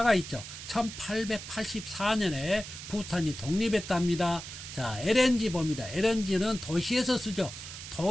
있죠. 1884년에 부탄이 독립했답니다. 자, LNG 봅니다. LNG는 도시에서 쓰죠.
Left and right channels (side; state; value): right; noise; hiss, 11 dB below the sound